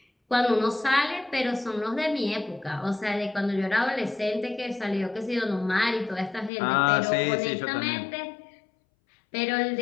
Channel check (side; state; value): right; drops out; at 6.5 s